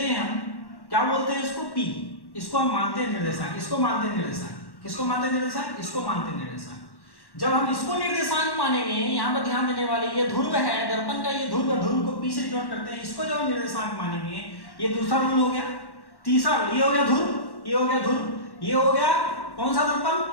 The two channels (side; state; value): right; late; 1.1 ms